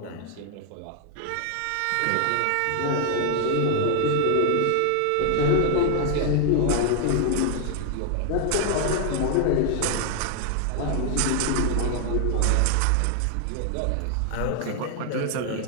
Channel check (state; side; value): different; both; correlation 0.00